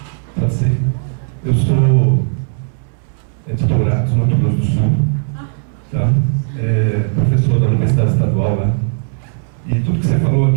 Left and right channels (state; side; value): silent; left; digital silence